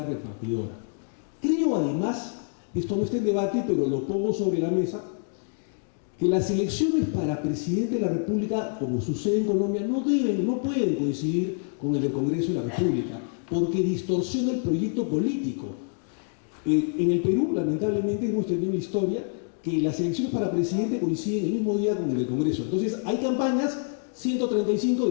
repartidora. Creo además, esto no está en debate, pero lo pongo sobre la mesa, que las elecciones para presidente de la República, como sucede en Colombia, no pueden coincidir con el del Congreso de la República, porque distorsiona el proyecto político. En el Perú, lamentablemente, hemos tenido la historia que las elecciones para presidente coinciden el mismo día con el del Congreso. Entonces, hay campañas, 135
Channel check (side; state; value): right; silent; 60 dB below the other